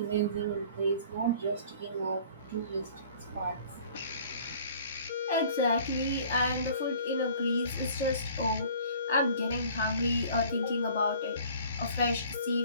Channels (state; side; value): inverted; both; correlation -0.51